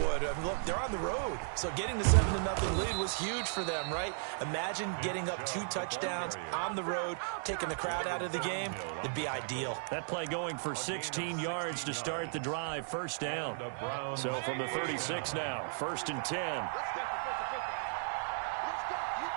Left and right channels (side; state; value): left; silent; digital silence